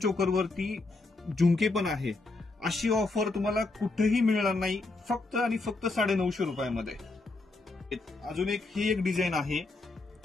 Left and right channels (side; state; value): right; quieter; 3.4 dB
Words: झुमके पण आहे. अशी ऑफर तुम्हाला कुठेही मिळणार नाही, फक्त आणि फक्त 950 रुपयामध्ये. अजून ही एक डिझाईन आहे.